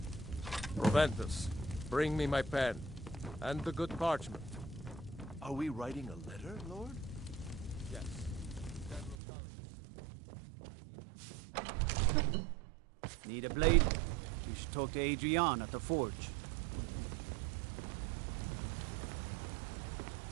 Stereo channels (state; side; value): drops out; left; at 9.2 s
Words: Proventus, bring me my pen. And the good parchment. Are we writing a letter, Lord? Yes. Need a blade? You should talk to Adrian at the forge.